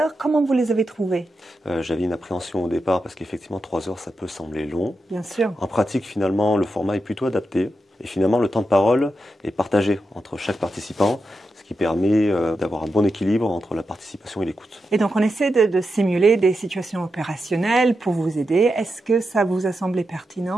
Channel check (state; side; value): normal; both; correlation 0.87